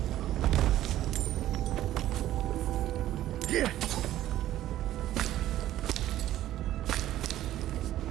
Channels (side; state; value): left; quieter; 13.4 dB